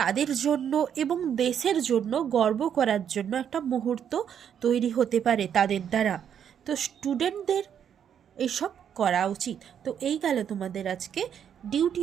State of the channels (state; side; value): quieter; left; 8.6 dB